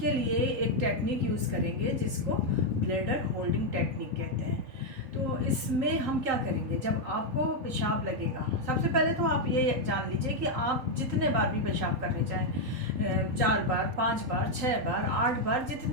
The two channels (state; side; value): late; left; 3.8 ms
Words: लिए एक टेक्निक यूज़ करेंगे जिसको ब्लैडर होल्डिंग टेक्निक कहते हैं। तो इसमें हम क्या करेंगे, जब आपको पेशाब लगेगा, सबसे पहले तो आप ये जान लीजिए कि आप जितने बार भी पेशाब करने जाएं, 4 बार, 5 बार, 6 बार, 8 बार,